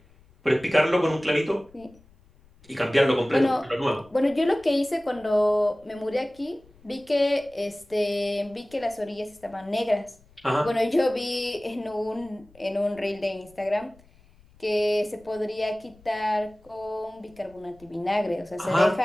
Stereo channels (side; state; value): left; noise; rumble, 28 dB below the sound